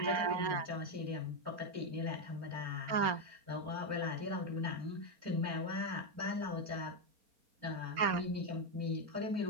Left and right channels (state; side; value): late; left; 4.3 ms